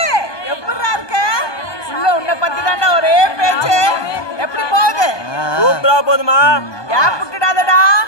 எப்படிடா இருக்க? உள்ள உன்னை பத்தி தாண்டா ஒரே பேச்சு. எப்படி போகுது? சூப்பரா போதுமா? கேப் விட்டுடாதடா,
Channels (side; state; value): right; late; 1.2 ms